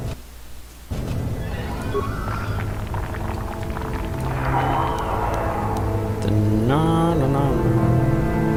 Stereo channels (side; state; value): both; identical; correlation 1.00